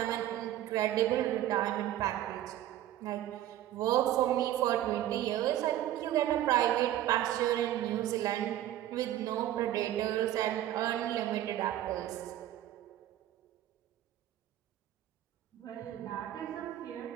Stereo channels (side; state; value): left; quieter; 13.0 dB